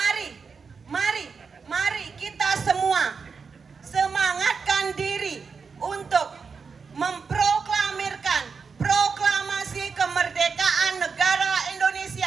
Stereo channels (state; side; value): quieter; left; 5.3 dB